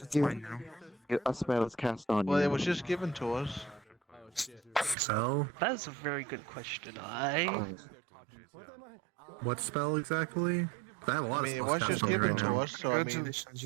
it's mine now. A spell is cast on Well, you. it was just given to us. Spell? That is a very good question. What spell exactly? I have a lot I mean, it of was spells just cast on given right to now. us, so I mean, Congratulations,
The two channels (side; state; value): left; drops out; at 5.0 s